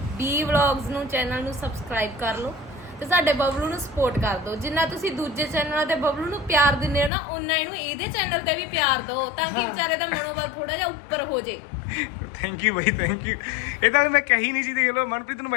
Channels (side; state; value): right; drops out; at 7.1 s